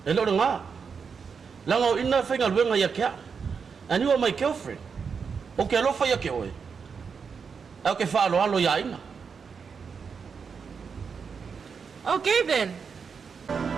E lora nga. Langa o ina whainga luenga ia kia. And you are my girlfriend. O ke alofa ia ke oe. Au ke wha alo alo ia ina. Okay then.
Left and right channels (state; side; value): quieter; left; 5.9 dB